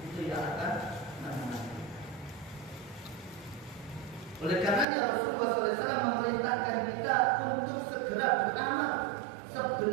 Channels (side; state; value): left; drops out; at 4.9 s